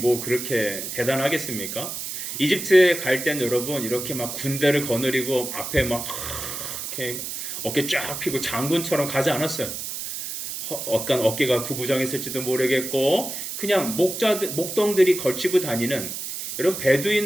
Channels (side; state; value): right; noise; hiss, 6 dB below the sound